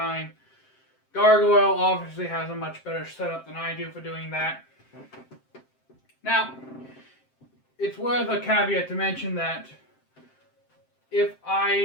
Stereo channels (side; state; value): right; late; 7.6 ms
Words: Gargoyle obviously has a much better setup than I do for doing that. Now, it's worth a caveat to mention that if